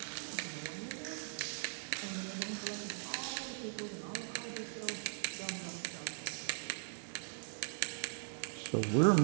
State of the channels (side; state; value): left; silent; digital silence